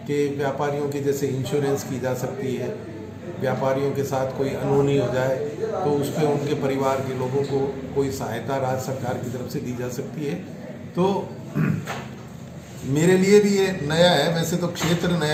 कि व्यापारियों के जैसे इंश्योरेंस की जा सकती है, व्यापारियों के साथ कोई अनहोनी हो जाए तो उस पर उनके परिवार के लोगों को कोई सहायता राज्य सरकार की तरफ से दी जा सकती है। तो मेरे लिए भी ये नया है। वैसे तो क्षेत्र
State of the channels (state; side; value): identical; both; correlation 1.00